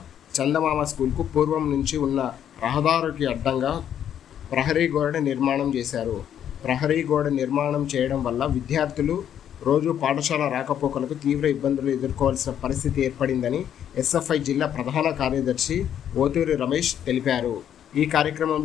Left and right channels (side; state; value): right; quieter; 9.7 dB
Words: చందమామ స్కూల్కు పూర్వం నుంచి ఉన్న రహదారికి అడ్డంగా ప్రహరీ గోడ నిర్మాణం చేశారు. ప్రహరీ గోడ నిర్మాణం చేయడం వల్ల విద్యార్థులు రోజు పాఠశాల రాకపోకలకు తీవ్ర ఇబ్బందులు ఎదుర్కోవాల్సిన పరిస్థితి ఏర్పడిందని ఎస్ఎఫ్ఐ జిల్లా ప్రధాన కార్యదర్శి ఓతూరి రమేష్ తెలిపారు. ఈ